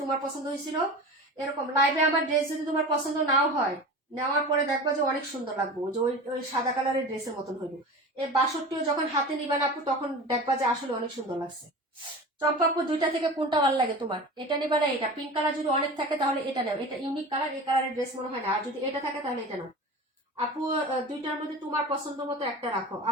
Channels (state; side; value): normal; both; correlation 0.33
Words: তোমার পছন্দ হয়েছিল। এরকম লাইভে আমার ড্রেস যদি তোমার পছন্দ নাও হয়, নেওয়ার পরে দেখবা যে অনেক সুন্দর লাগবে, যে ওই ওই সাদা কালারের ড্রেসের মতন হইব। এই 62 যখন হাতে নিবেন আপু, তখন দেখবা যে আসলে অনেক সুন্দর লাগছে। চম্পা আপু, দুইটা থেকে কোনটা ভালো লাগে তোমার? এটা নিবা না এটা? পিঙ্ক কালার যদি অনেক থাকে তাহলে এটা নাও, এটা ইউনিক কালার, এই কালারের ড্রেস মনে হয় না। আর যদি এটা থাকে তাহলে এটা নাও আপু। দুইটার মধ্যে তোমার পছন্দ মতো একটা রাখো